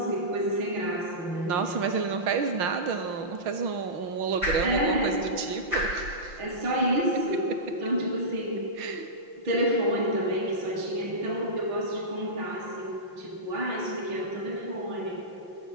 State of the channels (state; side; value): late; left; 5.7 ms